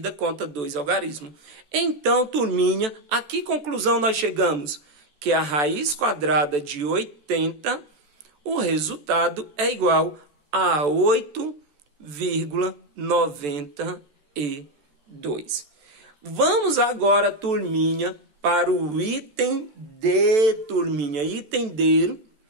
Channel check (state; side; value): late; left; 14 ms